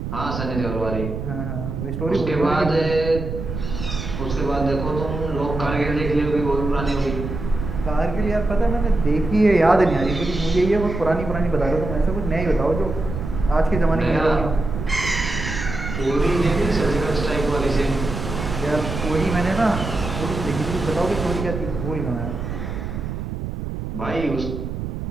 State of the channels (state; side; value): noise; right; rumble, 5 dB below the sound